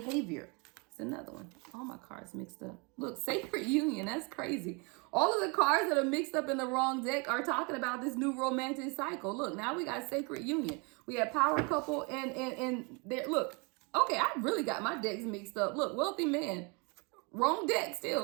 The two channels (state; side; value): quieter; left; 31.2 dB